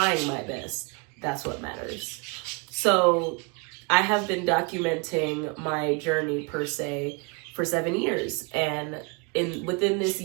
my best, that's what matters. So I have been documenting my journey per se for 7 years. And within this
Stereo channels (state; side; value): quieter; left; 32.1 dB